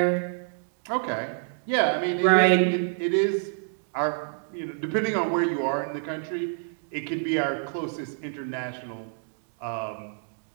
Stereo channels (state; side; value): silent; left; digital silence